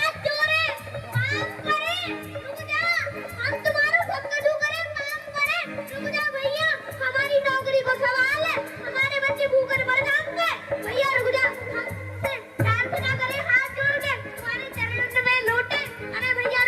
जोड़े काम करें, रुक जा, हम तुम्हारा भक्कड़ू करें काम करें, रुक जा भैया, हमारी नौकरी को सवाल है, हमारे बच्चे भूखे मर जाएंगे, भैया रुक जा, हमसे प्रार्थना करें हाथ जोड़ के तुम्हारे चरणों में लौटे, अरे भैया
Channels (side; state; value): both; identical; correlation 1.00